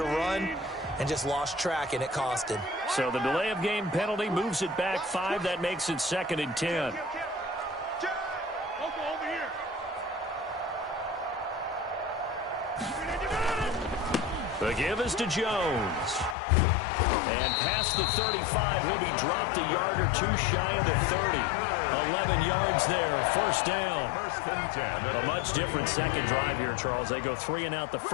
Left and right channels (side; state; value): right; drops out; at 16.4 s